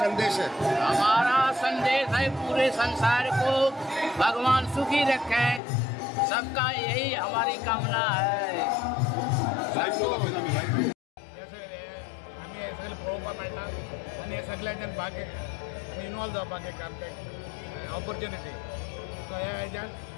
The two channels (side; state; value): right; drops out; at 5.6 s